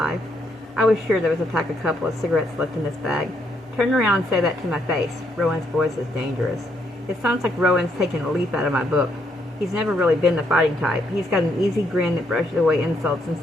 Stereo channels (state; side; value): normal; both; correlation 0.74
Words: I was sure there was a pack of couple of cigarettes left in this bag. "Turn around and say that to my face." Rowan's voice is dangerous. It sounds like Rowan's taken a leaf out of my book. He's never really been the fighting type. He's got an easy grin that brushes away insults and